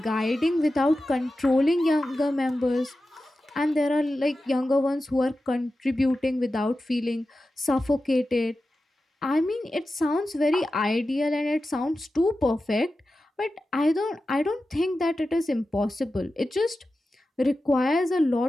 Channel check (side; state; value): both; normal; correlation 0.93